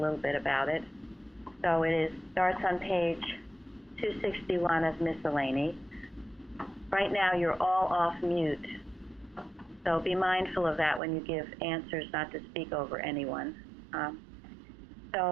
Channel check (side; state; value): left; drops out; at 11.0 s